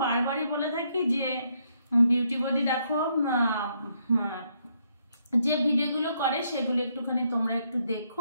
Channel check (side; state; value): both; inverted; correlation -0.74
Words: বারবারই বলে থাকি যে বিউটিপতি দেখো যে ভিডিওগুলো করে সেগুলো একটুখানি তোমরা একটু